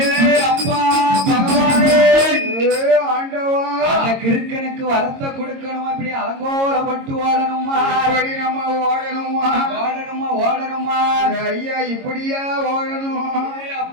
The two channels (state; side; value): late; left; 22 ms